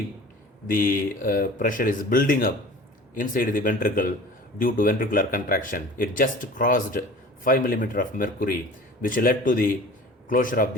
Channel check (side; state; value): both; normal; correlation 0.42